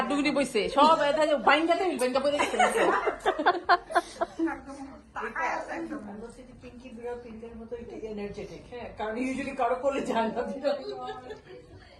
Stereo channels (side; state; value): both; identical; correlation 1.00